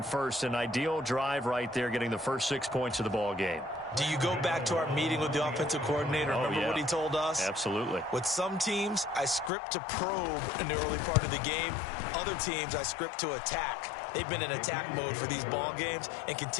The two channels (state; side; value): drops out; right; at 9.5 s